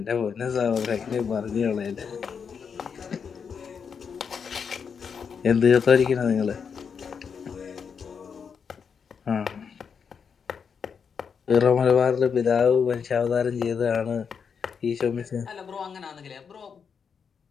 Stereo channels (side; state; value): right; quieter; 6.5 dB